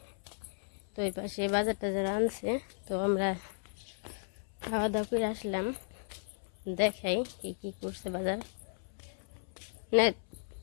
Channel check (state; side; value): silent; right; 55 dB below the other